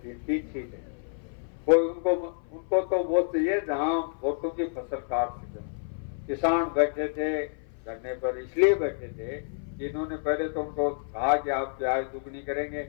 सीटें, कोई उनको तो वो चाहिए जहां वोटों की फसल काट सके। किसान बैठे थे धरने पर, इसलिए बैठे थे कि इन्होंने पहले तो उनको कहा कि आप प्याज दुगनी करेंगे,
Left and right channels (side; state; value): right; silent; 55 dB below the other